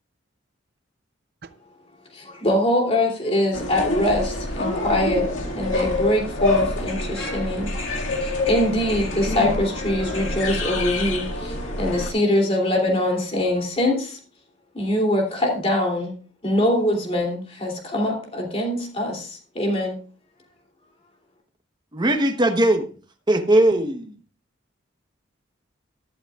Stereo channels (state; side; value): normal; both; correlation 0.44